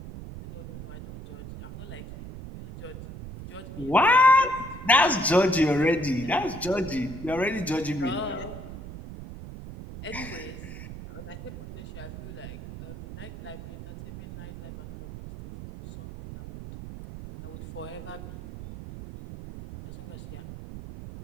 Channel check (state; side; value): noise; right; rumble, 12 dB below the sound